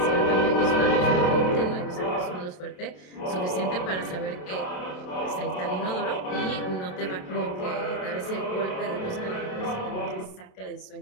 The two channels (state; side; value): late; right; 27 ms